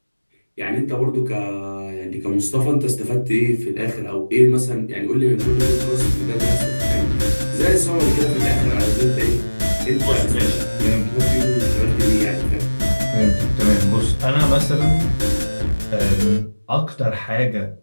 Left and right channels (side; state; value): both; inverted; correlation -1.00